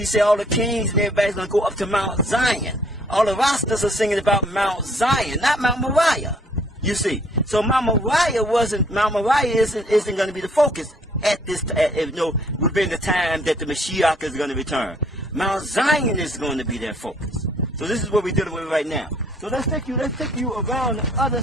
say all the kings and everybody's going to go up to Mount Zion. All the rosters are singing about Mount Zion, not Mount Moriah. You see, so Mount Moriah isn't going to be the focus at this, within the time that the Mashiach is going to return. Mount Zion is going to be their focus. So this is what we're dealing with right now. So let's take you around the other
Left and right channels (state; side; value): normal; both; correlation 0.62